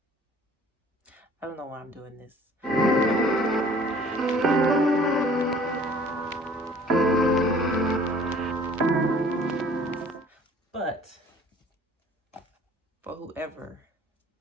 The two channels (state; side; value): normal; both; correlation 0.52